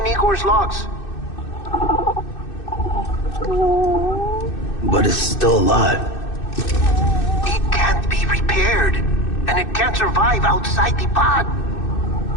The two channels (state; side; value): late; right; 2.6 ms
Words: Igor's logs. But it's still alive. It can't be repaired, and it can't survive outside the pod.